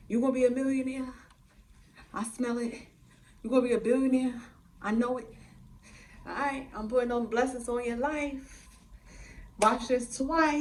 You gonna be a millionaire. I smell it. You're going to be a billionaire. I know it. All right, I'm putting those blessings on your life. Watch this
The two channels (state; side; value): identical; both; correlation 1.00